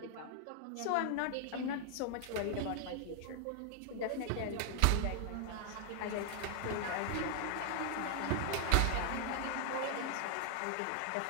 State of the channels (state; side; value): different; both; correlation 0.00